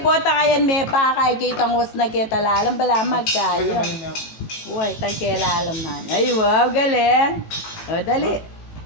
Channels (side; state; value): right; late; 18 ms